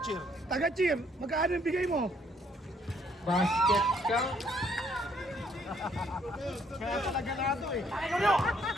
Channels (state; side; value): normal; both; correlation 0.67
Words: Taga-cheer, magkano yung bigay mo? Basket count. Kaya talaga na ito eh.